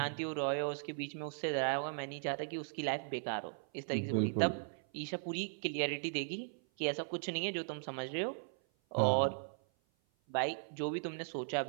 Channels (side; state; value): left; silent; 53 dB below the other